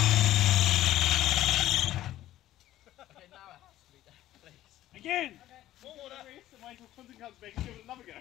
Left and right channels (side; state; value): right; quieter; 14.0 dB